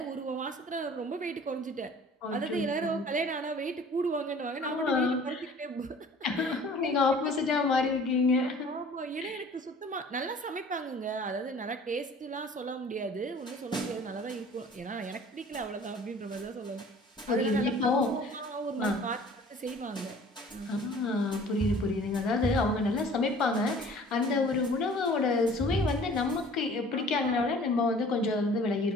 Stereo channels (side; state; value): both; normal; correlation 0.49